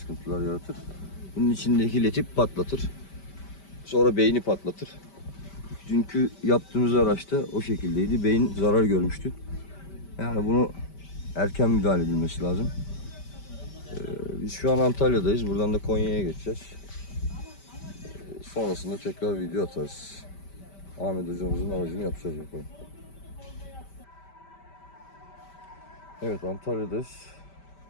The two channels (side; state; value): right; late; 5.1 ms